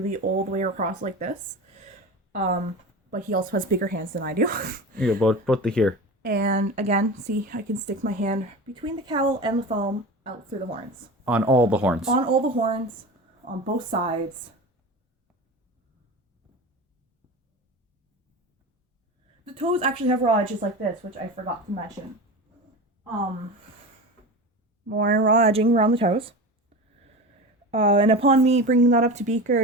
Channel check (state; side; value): normal; both; correlation 0.29